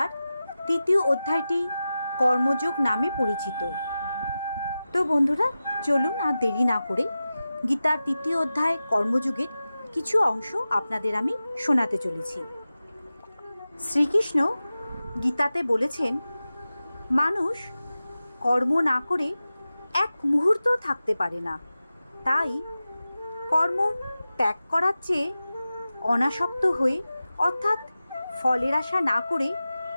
৩য় অধ্যায়টি কর্মযোগ নামে পরিচিত। তো বন্ধুরা, চলুন আর দেরি না করে গীতার ৩য় অধ্যায় কর্মযোগের কিছু অংশ আপনাদের আমি শোনাতে চলেছি। শ্রীকৃষ্ণ গীতাতে বলেছেন, মানুষ কর্ম না করে এক মুহূর্ত থাকতে পারে না। তাই কর্ম ত্যাগ করার চেয়ে অনাসক্ত হয়ে অর্থাৎ ফলের আশা না করে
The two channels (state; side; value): inverted; both; correlation -0.94